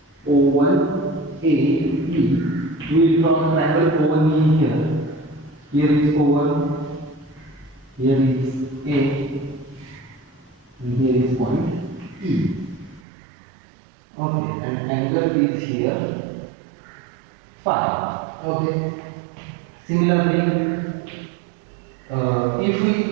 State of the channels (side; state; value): left; drops out; at 13.0 s